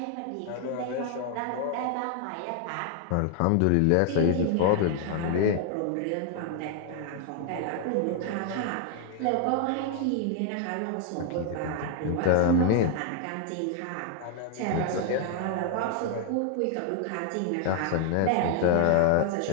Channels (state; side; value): different; both; correlation 0.00